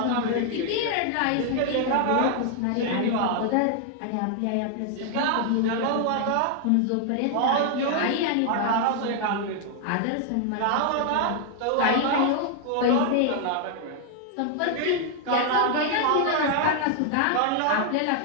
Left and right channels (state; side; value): different; both; correlation 0.00